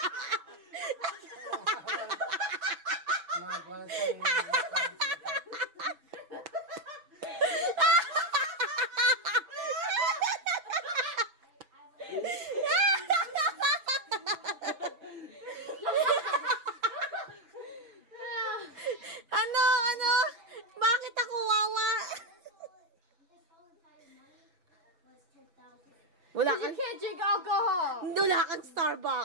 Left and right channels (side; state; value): left; late; 6.4 ms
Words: Ano? Bakit ako wawa? Wala You kang, can't drink alcohol. wala kang